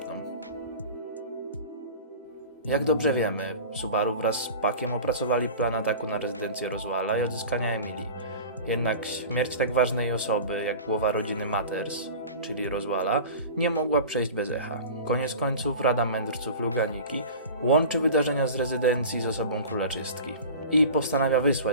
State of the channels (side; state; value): both; inverted; correlation -0.36